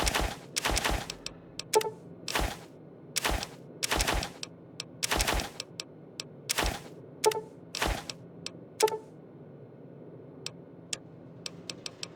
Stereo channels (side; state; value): both; identical; correlation 1.00